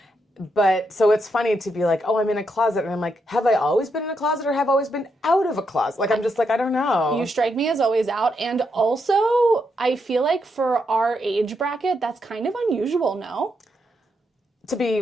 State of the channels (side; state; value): both; normal; correlation 0.81